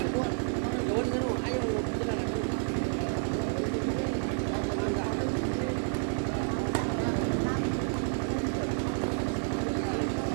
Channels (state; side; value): silent; left; 58 dB below the other